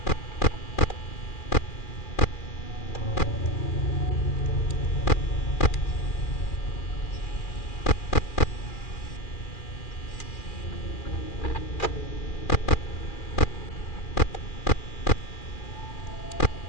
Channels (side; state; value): right; late; 2.4 ms